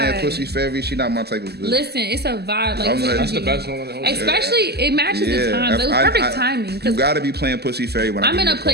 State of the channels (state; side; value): late; left; 0.47 ms